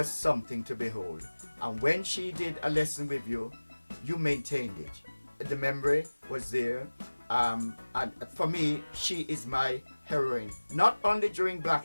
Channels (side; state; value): both; inverted; correlation -1.00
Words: something to behold. And when she did a lesson with you, you maintained it. The memory was there. And for me, she is my heroine, not only during Black